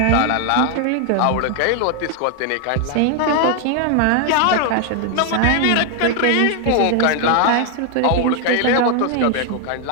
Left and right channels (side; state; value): both; different; correlation 0.00